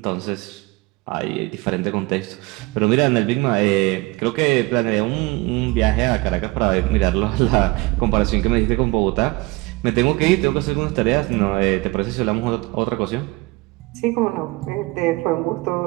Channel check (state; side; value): quieter; left; 22.9 dB